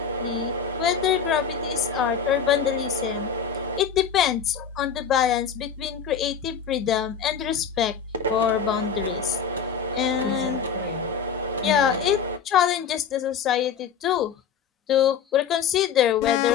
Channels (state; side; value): quieter; right; 7.0 dB